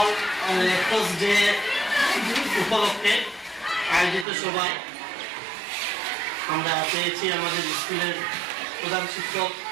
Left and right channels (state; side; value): drops out; left; at 4.2 s